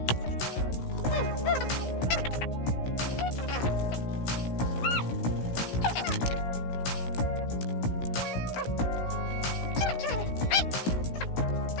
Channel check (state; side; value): late; right; 17 ms